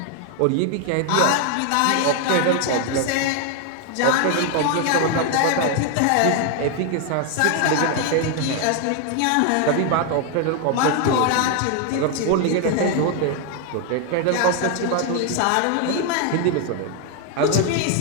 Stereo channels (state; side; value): different; both; correlation 0.00